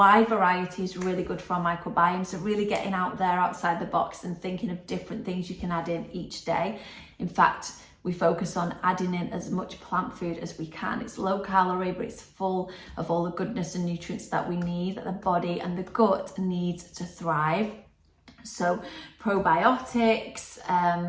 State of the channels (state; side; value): identical; both; correlation 1.00